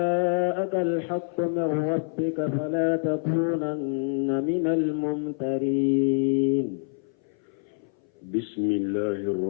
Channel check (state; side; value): silent; right; 59 dB below the other